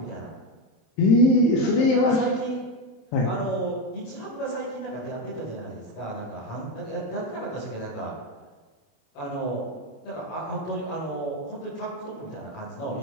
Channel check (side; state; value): right; late; 27 ms